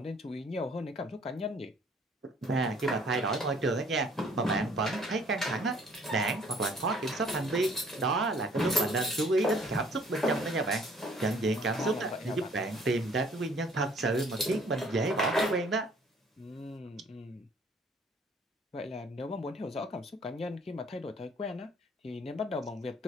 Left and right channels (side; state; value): both; normal; correlation 0.58